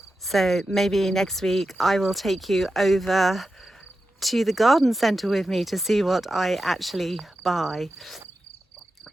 So maybe next week I will take you over to the garden centre with me to see what I actually buy.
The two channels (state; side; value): normal; both; correlation 0.90